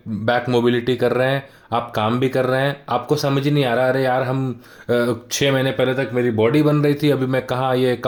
बैक मोबिलिटी कर रहे हैं, आप काम भी कर रहे हैं, आपको समझ ही नहीं आ रहा अरे यार हम 6 महीने पहले तक मेरी बॉडी बन रही थी, अभी मैं कहाँ ये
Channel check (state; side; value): identical; both; correlation 1.00